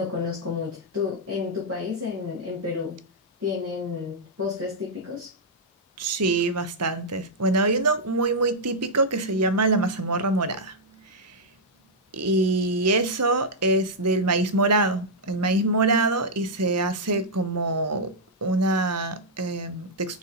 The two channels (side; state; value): both; normal; correlation -0.06